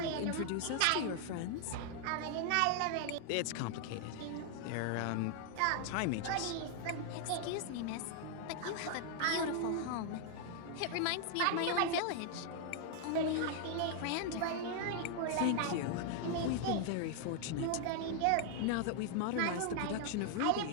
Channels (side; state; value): both; different; correlation 0.00